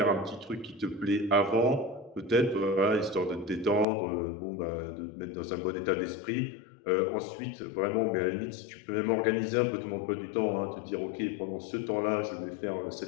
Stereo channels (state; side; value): drops out; right; at 3.9 s